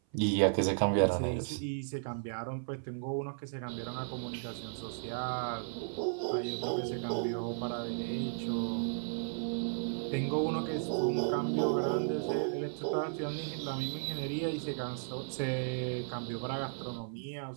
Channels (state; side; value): silent; left; 55 dB below the other